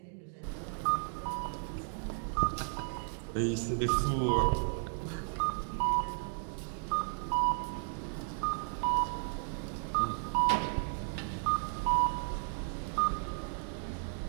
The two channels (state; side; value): silent; left; 55 dB below the other